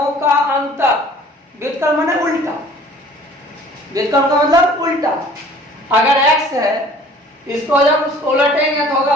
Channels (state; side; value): normal; both; correlation 0.50